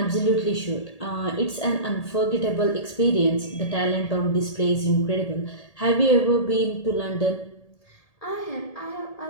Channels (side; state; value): right; late; 1.8 ms